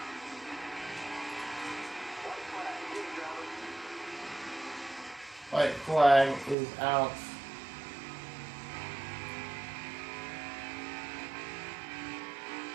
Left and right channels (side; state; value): left; drops out; at 6.6 s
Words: White flag is out.